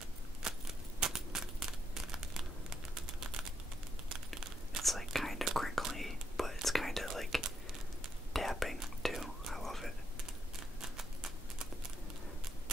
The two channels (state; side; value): normal; both; correlation 0.79